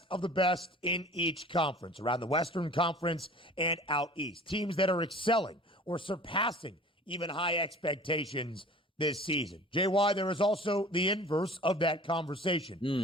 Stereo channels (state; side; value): normal; both; correlation 0.44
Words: of the best in each conference, around the Western Conference and out east. Teams that are excelling or surpassing even high expectations this season. JY, there is also the inverse of that